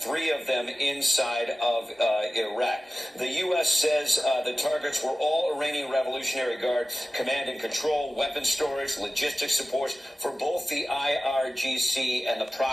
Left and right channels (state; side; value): normal; both; correlation 0.96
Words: 3 of them inside of Iraq. The U.S. says the targets were all Iranian Revolutionary Guard command and control, weapons storage, logistics support for both the IRGC and the